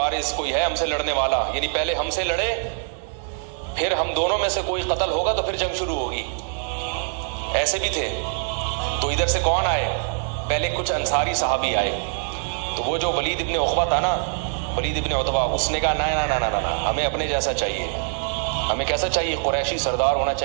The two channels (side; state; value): left; silent; digital silence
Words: کوئی ہے ہم سے لڑنے والا, یعنی پہلے ہم سے لڑے پھر ہم دونوں میں سے کوئی قتل ہوگا تو پھر جنگ شروع ہوگی, ایسے بھی تھے. تو ادھر سے کون آئے, پہلے کچھ انصاری صحابی آئے. تو وہ جو ولید ابن عقبہ تھا نا, ولید ابن عتبہ, اس نے کہا نہ ہمیں اپنے جیسا چاہیے, ہمیں کیسا چاہیے؟ قریشی سردار ہونا